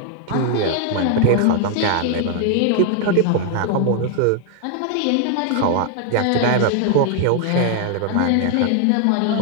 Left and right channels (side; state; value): both; different; correlation 0.00